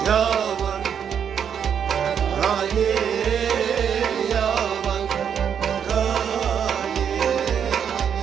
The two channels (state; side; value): quieter; left; 8.0 dB